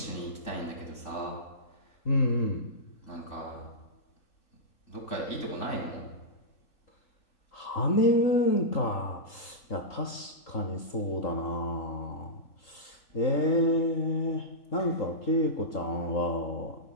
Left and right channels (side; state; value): right; late; 3.8 ms